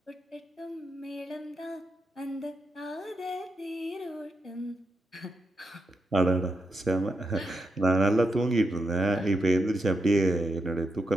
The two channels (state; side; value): normal; both; correlation 0.83